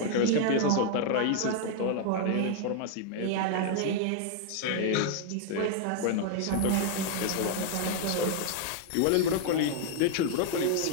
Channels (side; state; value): both; different; correlation 0.00